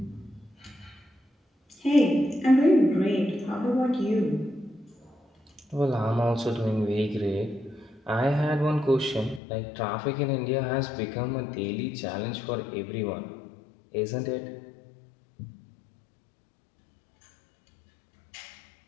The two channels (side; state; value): right; drops out; at 9.4 s